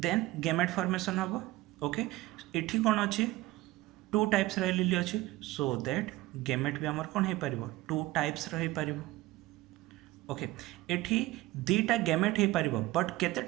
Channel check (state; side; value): quieter; left; 18.2 dB